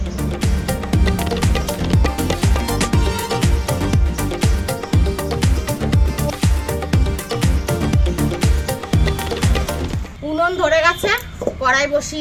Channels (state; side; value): identical; both; correlation 1.00